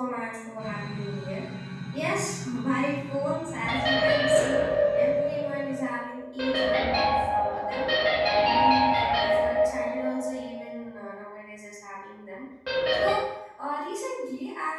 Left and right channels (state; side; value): identical; both; correlation 1.00